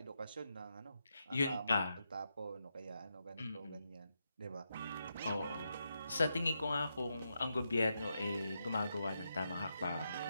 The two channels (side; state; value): both; inverted; correlation -0.84